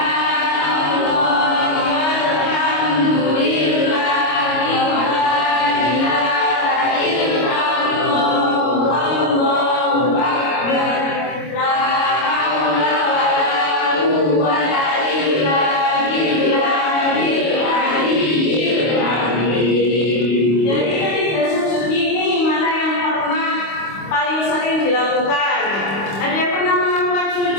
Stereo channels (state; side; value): late; right; 25 ms